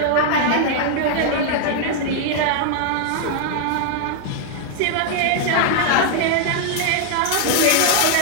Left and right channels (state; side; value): different; both; correlation -0.01